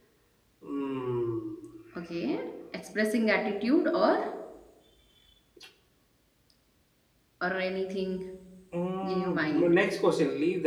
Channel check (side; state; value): both; identical; correlation 1.00